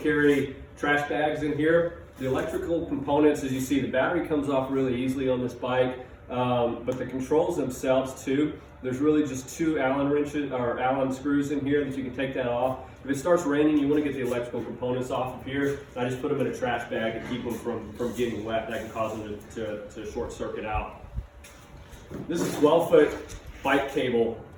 trash bags in here. The electrical components, as you see, the battery comes off really easily on this bike, but the controls themselves too. There's really just 2 Allen wrenches or Allen screws in here that you can take that off. If it starts raining, you want to get the electrical components off of here. I just put them in a trash bag to keep them from getting wet. That can cause them to short circuit out. This is 12-foot bike cable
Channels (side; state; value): both; identical; correlation 1.00